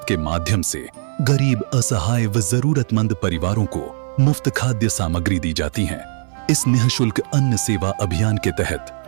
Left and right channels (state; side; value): silent; left; 58 dB below the other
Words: के माध्यम से गरीब, असहाय व जरूरतमंद परिवारों को मुफ्त खाद्य सामग्री दी जाती है। इस निःशुल्क अन्न सेवा अभियान के